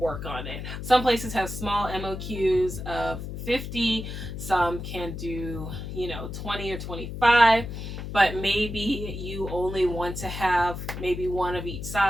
on it. Some places have small MOQs of 50, some can do 20 or 25, but maybe you only want to have maybe one of each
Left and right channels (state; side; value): noise; left; hum, 7 dB below the sound